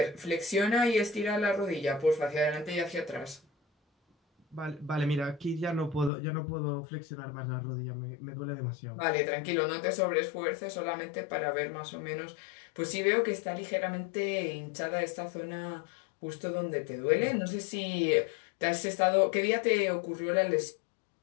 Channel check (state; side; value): drops out; right; at 6.1 s